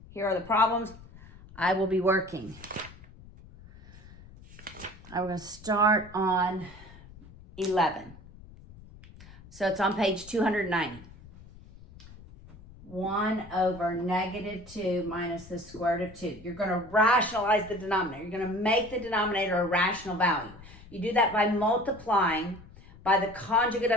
Here are the problems I will be working. I'm going to start on 11. So it's on page 290. 1 over negative 2 minus the square root of 2. You're going to rationalize the denominator. You're going to make the denominator a rational value. You do that by multiplying by the conjugate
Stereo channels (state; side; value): noise; left; rumble, 20 dB below the sound